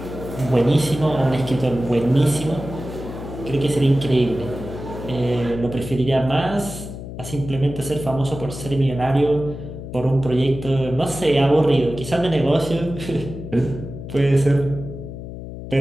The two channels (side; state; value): left; noise; hum, 10 dB below the sound